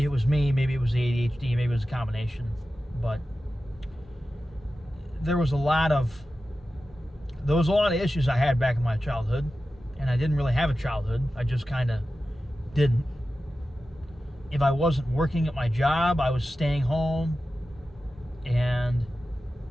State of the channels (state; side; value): normal; both; correlation 0.93